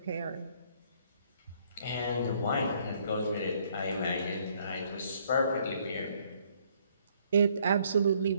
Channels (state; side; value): inverted; both; correlation -0.65